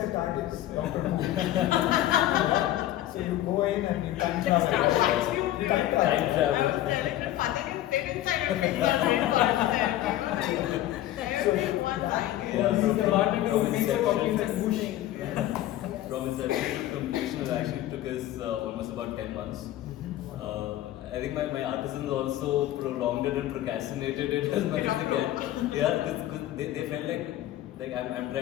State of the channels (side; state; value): right; quieter; 13.9 dB